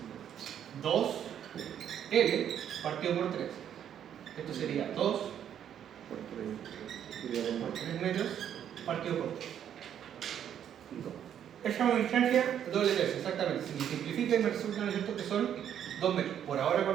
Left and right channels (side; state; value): left; quieter; 9.5 dB